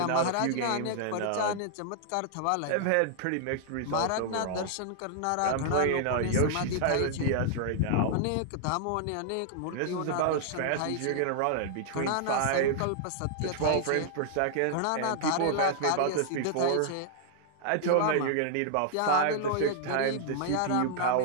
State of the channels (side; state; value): both; different; correlation -0.01